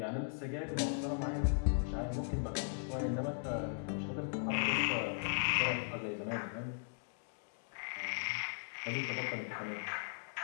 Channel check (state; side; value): silent; right; digital silence